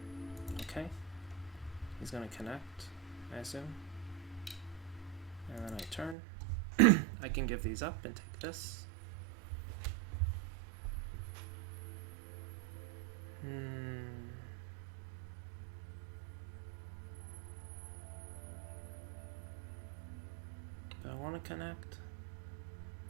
Okay. He's gonna connect, I assume. And then I turn. I can give these up and take this. Do I want to connect?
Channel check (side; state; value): left; drops out; at 6.2 s